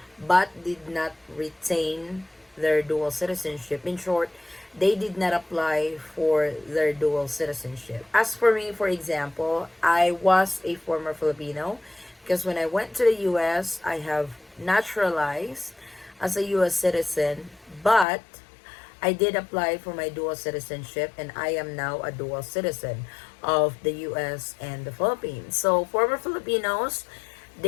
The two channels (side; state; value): right; drops out; at 18.1 s